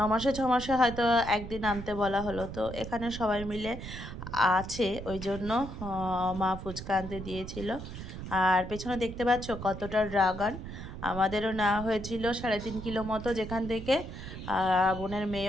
মাসে 6 মাসে হয়তো একদিন আনতে বলা হলো, তো এখানে সবাই মিলে আছে, ওই জন্য মা ফুচকা আনতে দিয়েছিল। আর পেছনে দেখতে পাচ্ছ কতটা ড্রাগন, আমাদেরও নেওয়া হয়েছিল 3.5 কিলো মতো, যেখান থেকে বোনের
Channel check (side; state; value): right; noise; rumble, 9 dB below the sound